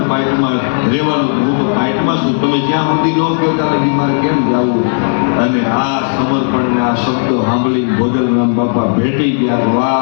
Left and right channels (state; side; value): silent; right; digital silence